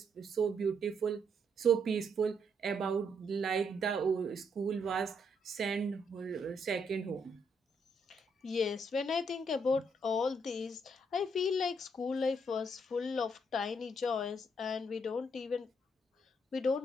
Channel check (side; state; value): both; normal; correlation 0.73